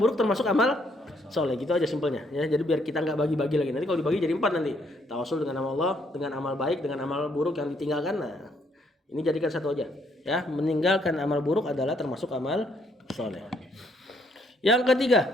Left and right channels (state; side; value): normal; both; correlation 0.70